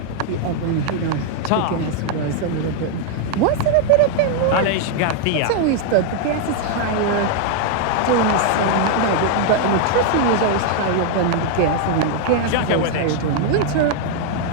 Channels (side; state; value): both; different; correlation 0.00